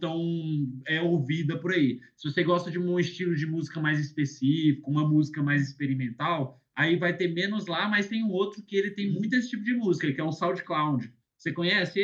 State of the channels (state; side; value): identical; both; correlation 1.00